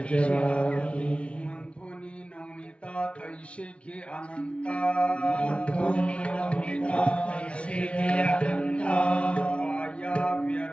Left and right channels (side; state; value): right; late; 0.060 ms